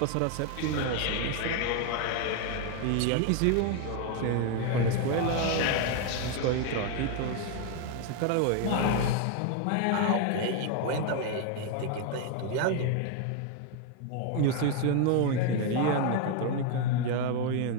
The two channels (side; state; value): both; different; correlation 0.01